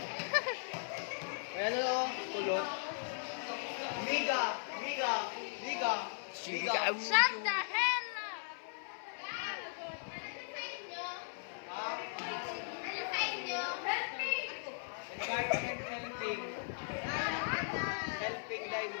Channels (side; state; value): right; silent; 52 dB below the other